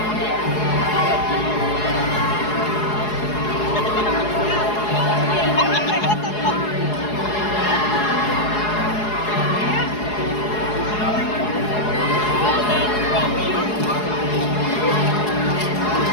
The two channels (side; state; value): right; late; 4.8 ms